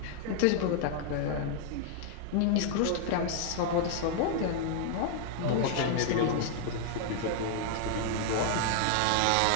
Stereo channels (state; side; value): different; both; correlation 0.00